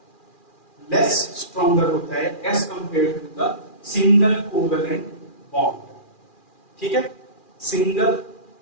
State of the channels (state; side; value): late; right; 2.4 ms